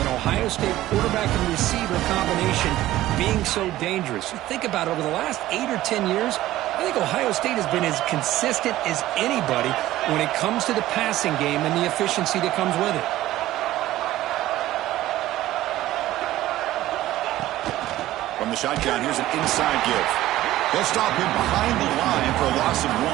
Ohio State quarterback and receiver combination being so dangerous. You think about it, over the last 8 or 10 years, I think Ohio State has been as consistent as anybody when it comes to the passing game and the efficiency that comes with it. From the shotgun, here's an inside give. They'll stop him behind the line for a loss of 1.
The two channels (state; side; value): quieter; left; 15.2 dB